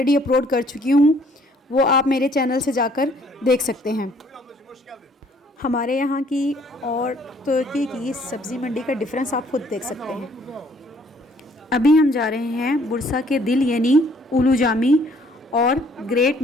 अपलोड कर चुकी हूँ, वो आप मेरे चैनल से जाकर देख सकते हैं। हमारे यहाँ की और तुर्की की सब्ज़ी मंडी का डिफरेंस आप खुद देख सकते हैं। अभी हम जा रहे हैं बुरसा के दिल यानी उलू जामी और ग्रेट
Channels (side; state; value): both; normal; correlation 0.62